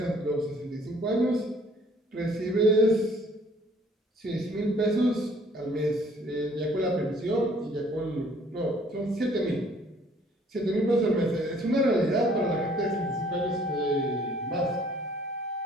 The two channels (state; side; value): normal; both; correlation 0.59